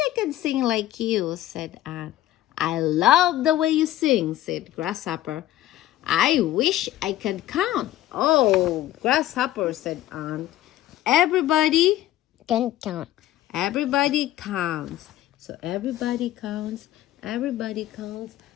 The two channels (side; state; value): right; quieter; 14.1 dB